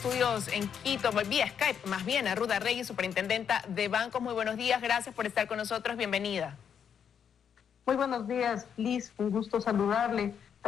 en Quito, vía Skype, más bien a Ruth Arregui, superintendenta de bancos. Muy buenos días, gracias por estar con nosotros, bienvenida. Muy buenos días, Liz, un gusto saludarle.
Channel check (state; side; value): quieter; right; 7.9 dB